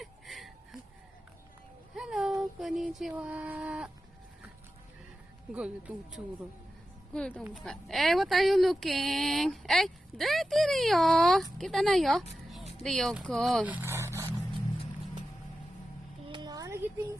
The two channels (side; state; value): both; normal; correlation 0.92